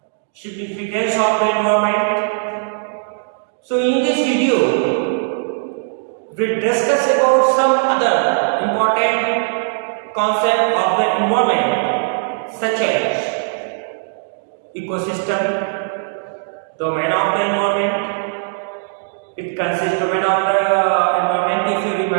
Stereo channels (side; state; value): left; silent; digital silence